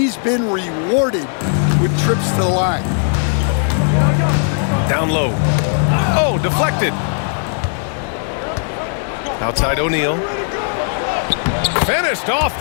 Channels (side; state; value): right; silent; 61 dB below the other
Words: been rewarded with trips to the line. Down low. Oh, deflected. Outside O'Neal. Finished off